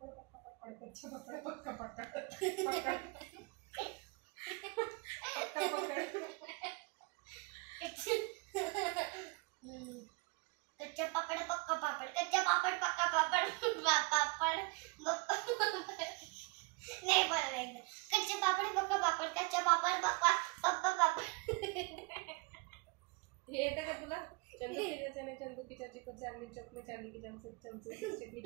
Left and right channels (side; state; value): left; quieter; 29.1 dB